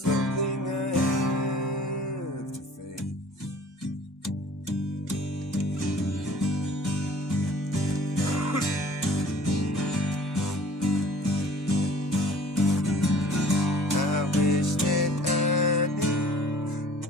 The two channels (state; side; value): normal; both; correlation 0.49